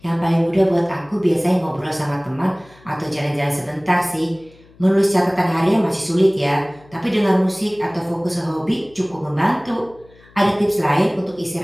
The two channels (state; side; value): noise; left; hum, 27 dB below the sound